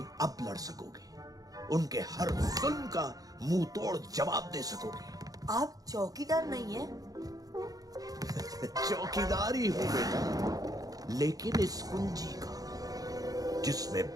अब लड़ सकोगे। उनके हर जुल्म का मुंह तोड़ जवाब दे सकोगे। आप चौकीदार नहीं है? चौकीदार ही हूं बेटा, लेकिन इस कुंजी का जिसमें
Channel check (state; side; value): late; left; 0.18 ms